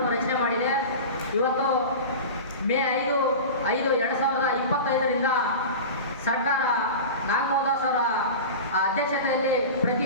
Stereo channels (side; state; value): both; inverted; correlation -0.30